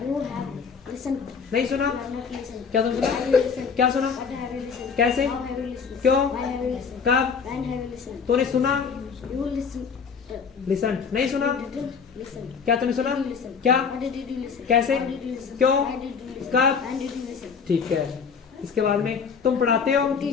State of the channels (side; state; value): right; quieter; 6.0 dB